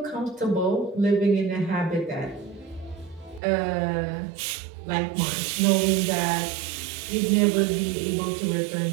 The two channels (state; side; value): drops out; left; at 3.4 s